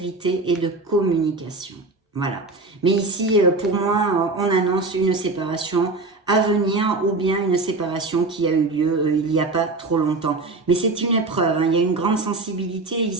et de communication. Voilà. Mais ici, pour moi, on annonce une séparation à venir ou bien une séparation qui a eu lieu il n'y a pas trop longtemps. Mais c'est une épreuve, il y a une grande sensibilité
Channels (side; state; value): left; quieter; 3.4 dB